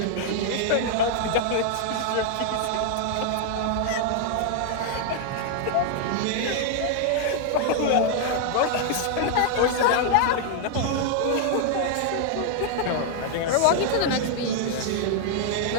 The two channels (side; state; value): both; different; correlation 0.00